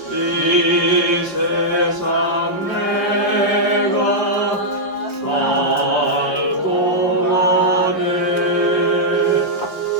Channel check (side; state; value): right; late; 5.3 ms